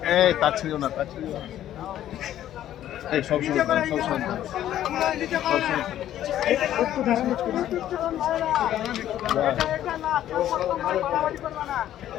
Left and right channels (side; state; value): right; quieter; 12.0 dB